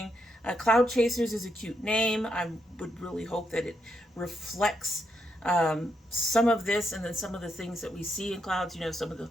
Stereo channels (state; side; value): normal; both; correlation 0.80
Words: Cloud Chasers is a cute name. I would really hope that it reflects some of this and then some of the things that we see in clouds, you know, some of